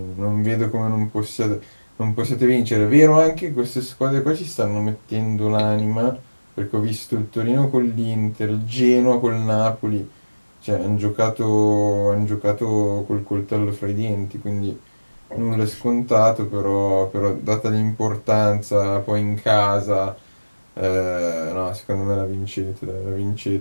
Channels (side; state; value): both; inverted; correlation -1.00